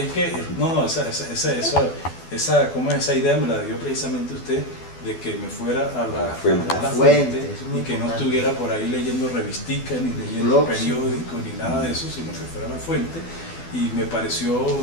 que, esa idea me la dio precisamente usted, de que me fuera a la fuente y que no estuviera por ahí leyendo revisticas, ni leyendo periódicos, ni nada de eso, sino que fuera a la fuente. Y me pareció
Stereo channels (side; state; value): right; late; 12 ms